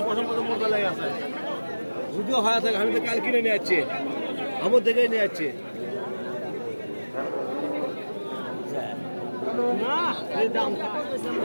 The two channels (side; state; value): both; inverted; correlation -1.00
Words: পছন্দ মতো মোটা লেগে আছে। যদিও হয় থাকে আমি তো কাল কিনে নিয়ে যাচ্ছি, আমার দেখেই নিয়ে যাচ্ছি